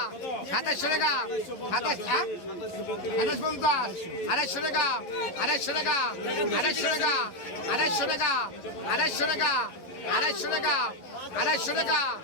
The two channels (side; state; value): right; late; 11 ms